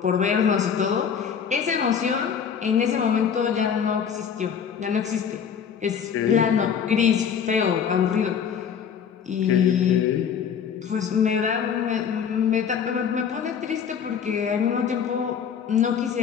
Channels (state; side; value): quieter; right; 7.5 dB